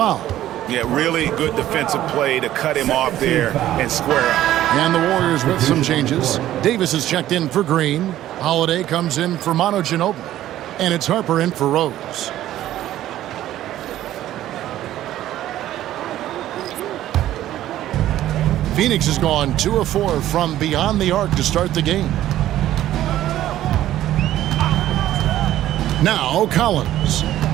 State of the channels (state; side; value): quieter; left; 13.3 dB